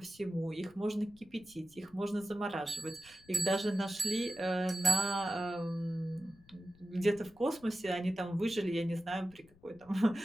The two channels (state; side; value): noise; left; rumble, 27 dB below the sound